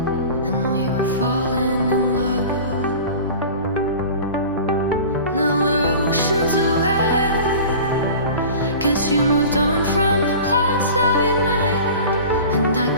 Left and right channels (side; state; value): both; inverted; correlation -0.38